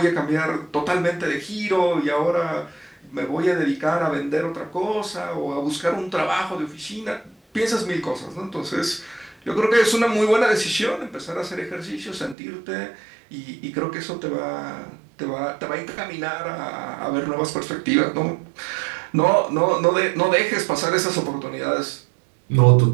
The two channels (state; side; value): drops out; left; at 12.4 s